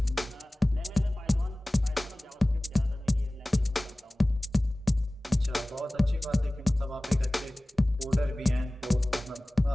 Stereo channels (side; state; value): both; normal; correlation 0.98